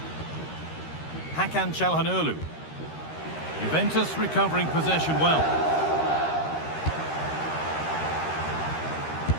Hakan Çalhanoğlu. Juventus recovering possession well.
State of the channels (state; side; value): late; right; 13 ms